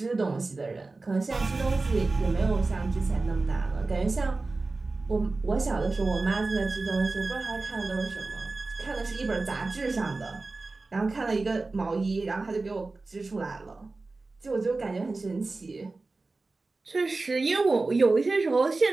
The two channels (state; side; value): quieter; left; 3.5 dB